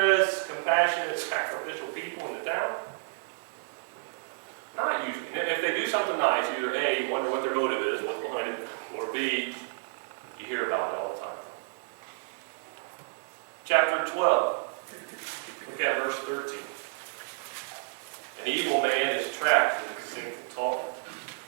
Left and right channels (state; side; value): silent; left; digital silence